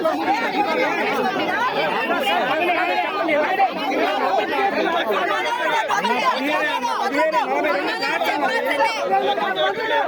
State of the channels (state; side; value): identical; both; correlation 1.00